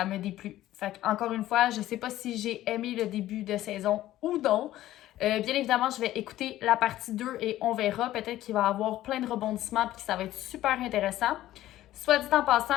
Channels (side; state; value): right; quieter; 14.4 dB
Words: me déplut. Fait encore une fois, je sais pas si j'ai aimé le début de saison ou non. Bien évidemment, je vais écouter la partie 2 et on verra. Peut-être qu'il va y avoir plein de rebondissements et que ça va être super intéressant. Soit dit en